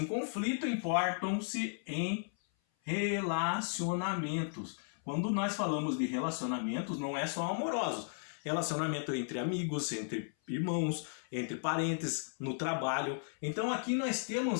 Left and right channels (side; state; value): right; silent; 54 dB below the other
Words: conflito importam-se em relacionamentos. Quando nós falamos de relacionamentos, não é só amorosos. Relacionamento entre amigos, entre irmãos, entre parentes, no trabalho. Então aqui nós